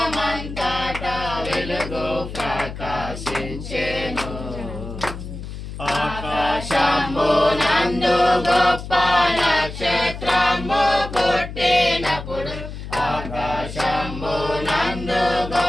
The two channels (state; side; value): noise; left; hum, 9 dB below the sound